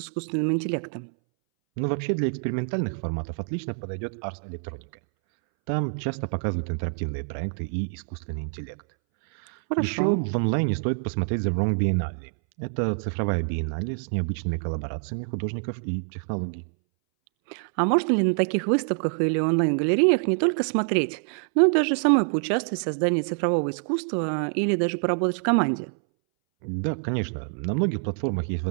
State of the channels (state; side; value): silent; left; 61 dB below the other